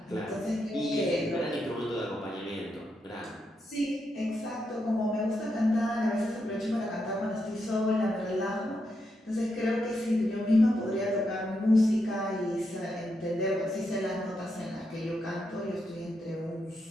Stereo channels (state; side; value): normal; both; correlation 0.83